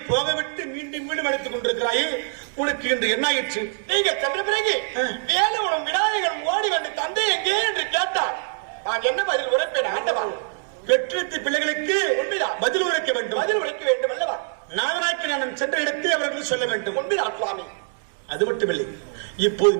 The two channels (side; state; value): left; silent; 63 dB below the other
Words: போகவிட்டு மீண்டும் மீண்டும் எடுத்துக் கொண்டிருக்கிறாயே, உனக்கு இன்று என்ன ஆயிற்று? நீங்க சென்ற பிறகு வேலுவனும் விநாயகன் ஓடி வந்து தந்தை எங்கே என்று கேட்டார். நான் என்ன பதில் உரைப்பேன்? ஆண்டவா பெற்றெடுத்த பிள்ளைகளுக்கு உண்மைதான் பதில் உரைக்க வேண்டும். பதில் உரைக்க வேண்டும் அல்லவா? நாதனாக்கி நான் சென்ற இடத்தை அவர்கள் சொல்ல வேண்டும். உண்மைதான் சுவாமி. அது மட்டுமில்லை, இப்போது